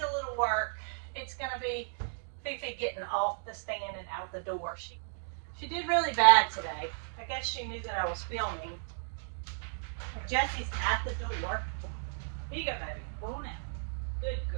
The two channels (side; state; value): left; silent; digital silence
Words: little work, it's gonna be Fifi getting off the stand and out the door. She did really bad today. I guess she knew that I was filming. Jessie's at the door. Here you go, baby. Go on out. Good